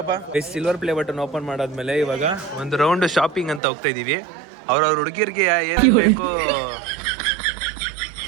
ಸಿಲ್ವರ್ ಪ್ಲೇ ಬಟನ್ ಓಪನ್ ಮಾಡಾದ್ಮೇಲೆ ಇವಾಗ ಒಂದು ರೌಂಡ್ ಶಾಪಿಂಗ್ ಅಂತ ಹೋಗ್ತಾ ಇದೀವಿ. ಅವ್ರವ್ರ ಹುಡುಗಿರ್ಗೆ ಏನ್ ಬೇಕೋ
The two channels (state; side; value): drops out; left; at 3.6 s